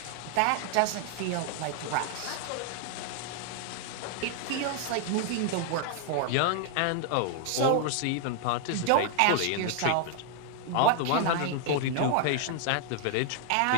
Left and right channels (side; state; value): both; different; correlation 0.00